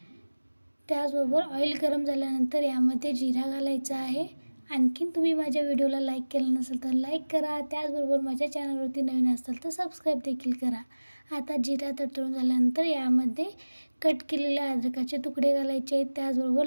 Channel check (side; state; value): both; inverted; correlation -1.00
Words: त्याचबरोबर ऑइल गरम झाल्यानंतर यामध्ये जिरा घालायचा आहे। आणखीन तुम्ही माझ्या व्हिडिओला लाईक केलं नसेल तर लाईक करा, त्याचबरोबर माझ्या चॅनलवरती नवीन असाल तर सबस्क्राईब देखील करा। आता जिरा तडतडून झाल्यानंतर यामध्ये कट केलेले अद्रकाचे तुकडे घालायचे आहेत, त्याचबरोबर